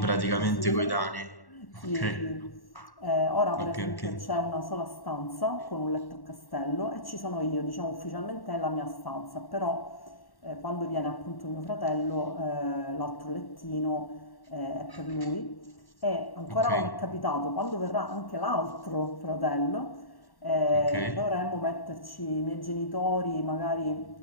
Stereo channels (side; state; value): right; late; 1.1 ms